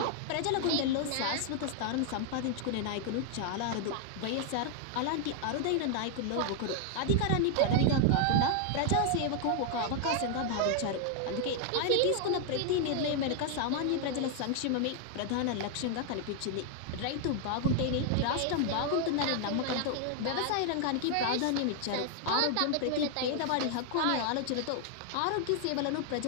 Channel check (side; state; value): both; different; correlation 0.00